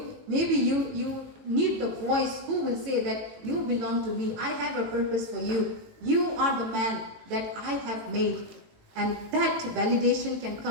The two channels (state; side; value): late; left; 18 ms